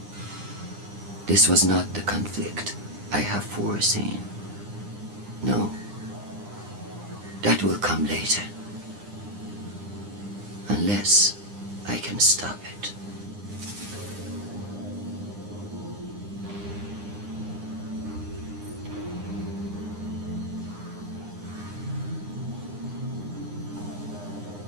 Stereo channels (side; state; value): left; late; 9.8 ms